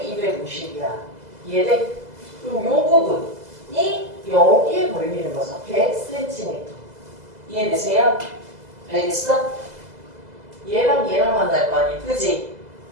이해돼? 그럼 요 부분이 여기에 걸리는 거죠. 100cm. 이해되세요? 알겠어? 얘랑 얘랑 만날 거 아니야. 그지?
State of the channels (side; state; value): left; late; 2.0 ms